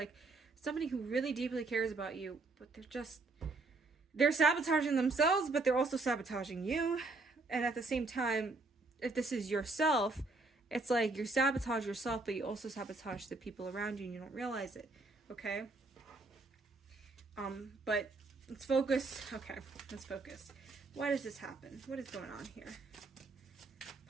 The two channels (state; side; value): quieter; left; 3.4 dB